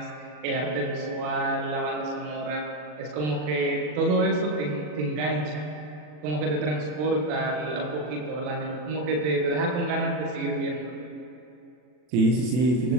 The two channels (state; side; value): late; left; 40 ms